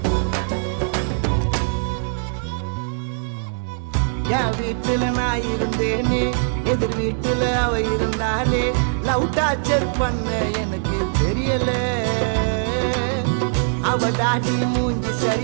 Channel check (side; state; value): left; silent; 64 dB below the other